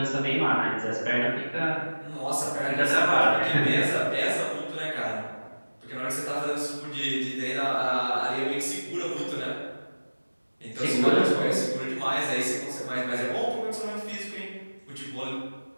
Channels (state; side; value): inverted; both; correlation -1.00